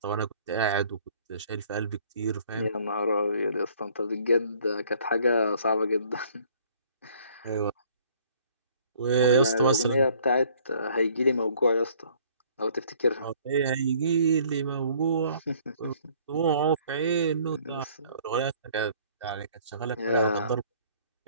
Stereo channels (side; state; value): both; inverted; correlation -0.58